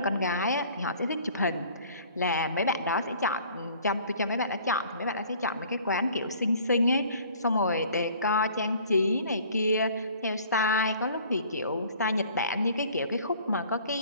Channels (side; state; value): both; inverted; correlation -0.52